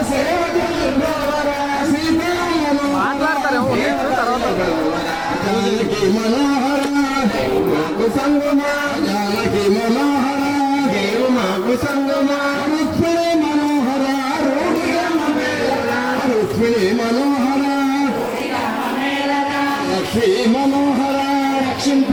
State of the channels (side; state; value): both; identical; correlation 1.00